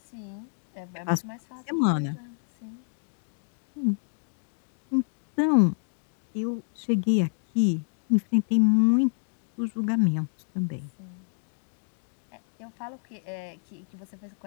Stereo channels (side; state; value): right; silent; digital silence